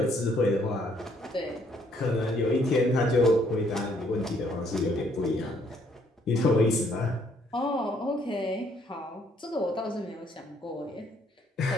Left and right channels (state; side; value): normal; both; correlation 0.67